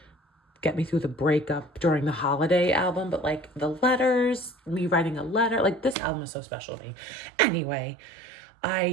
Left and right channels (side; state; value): left; drops out; at 6.0 s